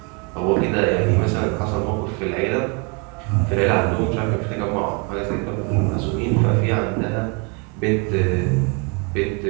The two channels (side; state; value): left; quieter; 32.7 dB